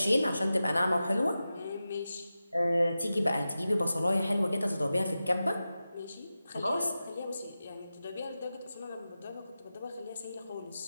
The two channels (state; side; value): inverted; both; correlation -0.93